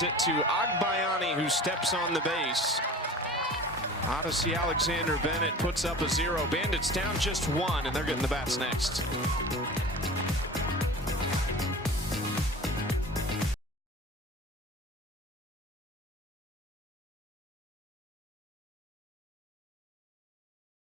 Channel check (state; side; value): normal; both; correlation 0.39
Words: it to Agbayani, who steps on the base. Odyssey Alexander Bennett puts up a 0. Bandits down just 1, and they're getting the bats next.